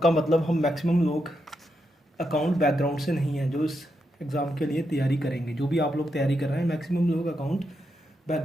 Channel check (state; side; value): normal; both; correlation 0.83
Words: मतलब हम मैक्सिमम लोग अकाउंट बैकग्राउंड से नहीं हैं जो इस एग्ज़ाम के लिए तैयारी करेंगे। जो भी आप लोग तैयारी कर रहे हैं, मैक्सिमम लोग अकाउंट